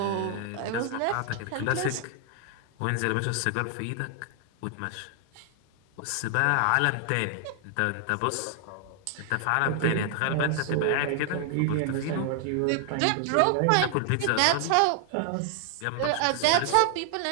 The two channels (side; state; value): both; different; correlation 0.00